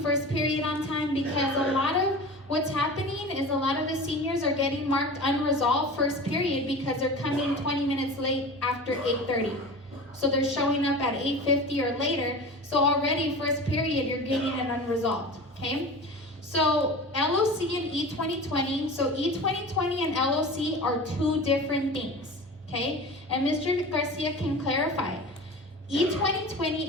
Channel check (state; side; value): normal; both; correlation 0.34